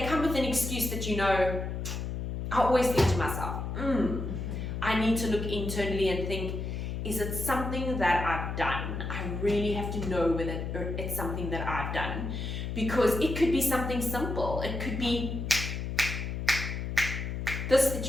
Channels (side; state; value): left; noise; hum, 4 dB below the sound